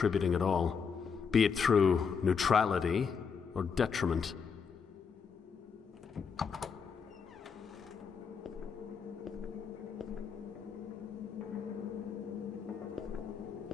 at all, be it through neutrality or detriment.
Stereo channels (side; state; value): right; quieter; 6.1 dB